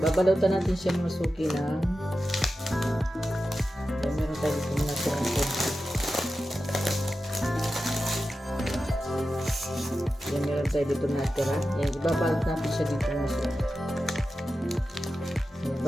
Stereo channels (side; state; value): both; normal; correlation 0.92